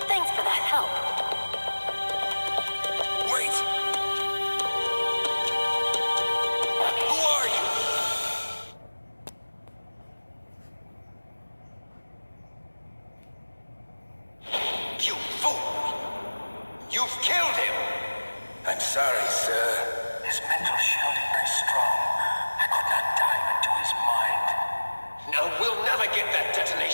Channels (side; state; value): both; inverted; correlation -1.00